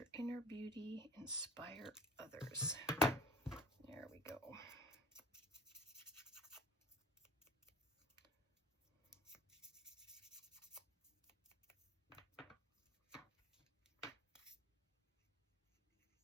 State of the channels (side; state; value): both; normal; correlation 0.43